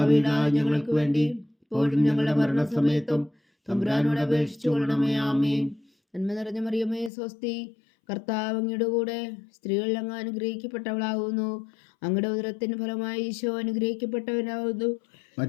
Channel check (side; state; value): right; drops out; at 7.1 s